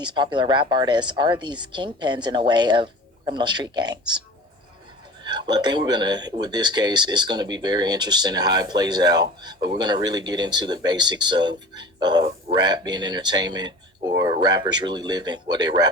popular rap artists are these kingpins in a way of criminal street gangs? Well, I think with this case, it's gonna be very interesting in how it plays out. But we're gonna really get into the basics of rap being entertainment or rappers really living what they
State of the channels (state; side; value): normal; both; correlation 0.39